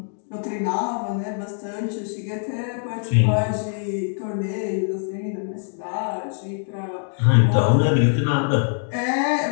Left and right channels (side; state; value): right; silent; digital silence